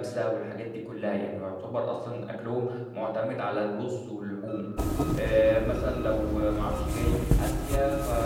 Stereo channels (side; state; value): both; identical; correlation 1.00